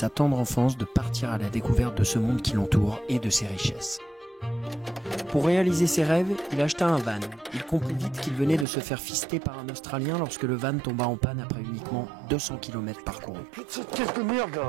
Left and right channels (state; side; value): drops out; left; at 8.7 s